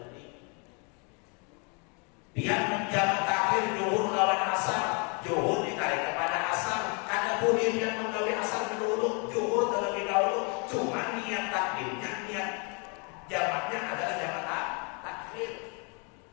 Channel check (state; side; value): quieter; right; 34.9 dB